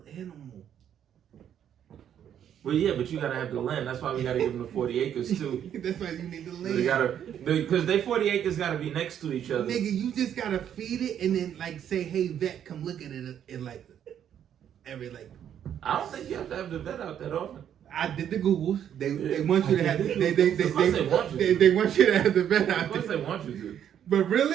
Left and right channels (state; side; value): quieter; left; 9.5 dB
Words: animal. Well, yeah, but you gotta have the land. That's why we gotta give them the 40 acres too. That's why you need the So land. because they 40 acres gotta be next to each other. Nigga, you just gotta feed it and then like say, hey vet, come look at it in like every like. I don't think you have to have the vet out that often. I did the Googles. They want you to have they want you to have the vet Of out course there. they want you to. But